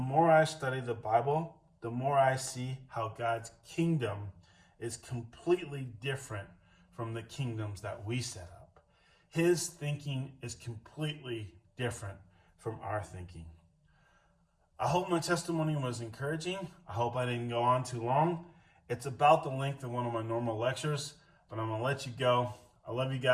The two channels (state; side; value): identical; both; correlation 1.00